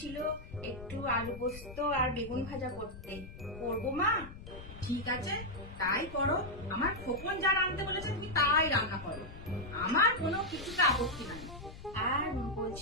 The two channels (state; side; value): noise; left; rumble, 13 dB below the sound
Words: একটু আলু পোস্ত আর বেগুন ভাজা করতে, করবো মা? ঠিক আছে, তাই করো। আমার খোকন যা রাঁধতে বলেছে তুমি তাই রান্না করো, আমার কোনো কিছুতে আপত্তি নাই। আর